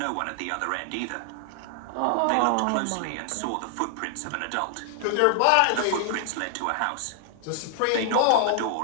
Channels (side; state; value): both; different; correlation 0.00